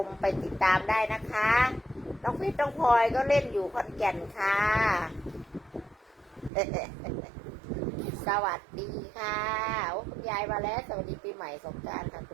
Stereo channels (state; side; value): drops out; left; at 6.5 s